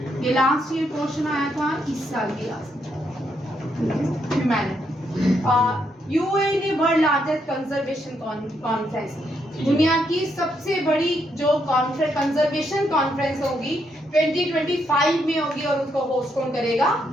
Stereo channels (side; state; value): both; normal; correlation 0.77